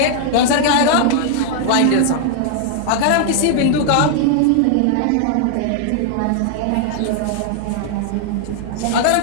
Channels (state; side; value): different; both; correlation 0.00